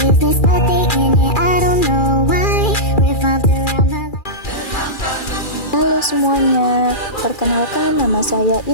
but they in it, I don't know why. Revolved around my life. Halo semuanya, perkenalkan nama saya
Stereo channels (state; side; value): late; right; 2.4 ms